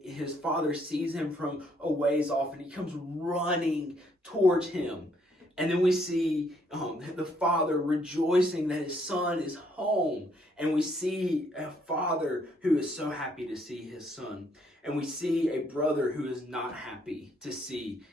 his father sees him from a ways off, and he comes running towards him. And then we see the father rejoicing that his son is home. And we see a father who is so happy to see his son. And we see a brother who is not happy to see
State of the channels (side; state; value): both; normal; correlation 0.69